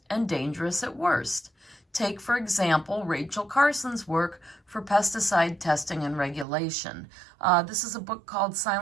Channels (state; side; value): drops out; left; at 6.5 s